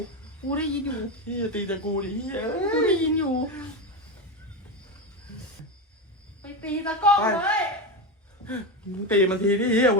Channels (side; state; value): both; normal; correlation 0.15